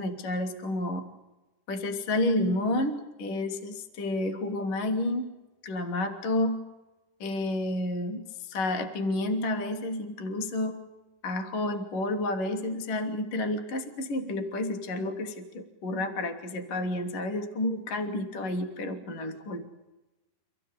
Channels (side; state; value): right; late; 11 ms